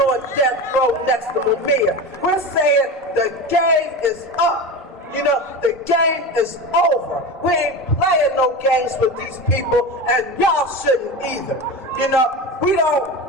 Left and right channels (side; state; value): both; normal; correlation 0.26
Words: on death row next to Mumia. We're saying the game is up. You know, the game is over. We ain't playing no games with these people, and y'all shouldn't either. You know, we